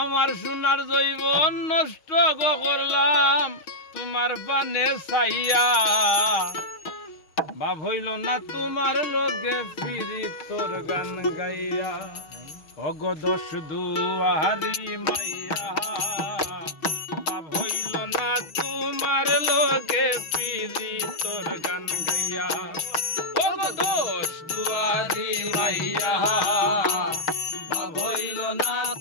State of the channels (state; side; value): late; right; 6.4 ms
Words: আমার সোনার জৈবন নষ্ট করলাম তোমার পানে চাইয়া। ভাব হইল না তোমার লগে ফিরি তোর গান গাইয়া। অগ দশ দুয়ারি মাইয়া ভাব হইল না তোমার লগে ফিরি তোর গান গাইয়া। অগ দশ দুয়ারি মাইয়া ভাব হইল না